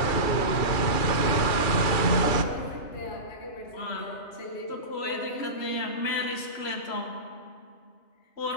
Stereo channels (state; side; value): late; right; 2.4 ms